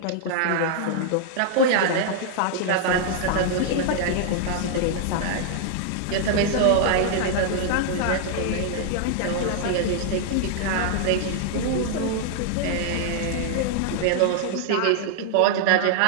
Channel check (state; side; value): different; both; correlation -0.01